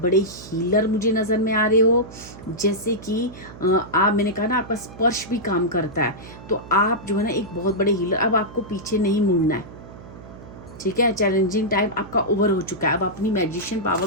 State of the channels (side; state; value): right; noise; hum, 16 dB below the sound